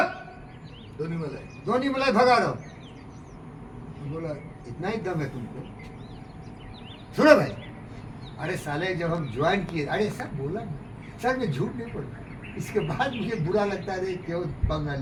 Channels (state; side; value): identical; both; correlation 1.00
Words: धोनी मलाई भगा रहा हूँ। तो बोला इतना ही दम है तुमको, सुनो भाई। अरे साले जब हम ज्वाइन किए, अरे सर बोला ना सर, मैं झूठ नहीं बोलता, इसके बाद मुझे बुरा लगता है क्यों पंगा